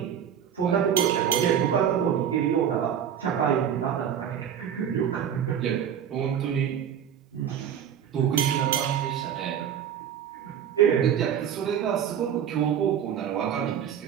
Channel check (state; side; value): quieter; left; 9.0 dB